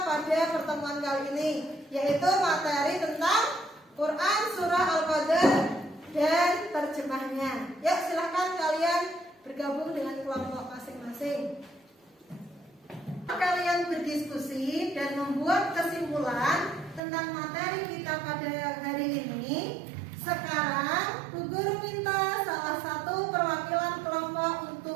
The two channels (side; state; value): left; drops out; at 17.0 s